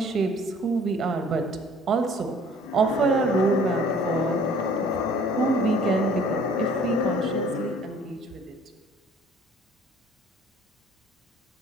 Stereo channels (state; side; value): normal; both; correlation 0.53